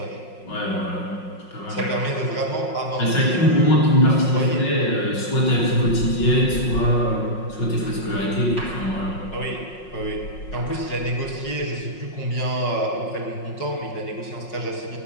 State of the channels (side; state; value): right; late; 5.5 ms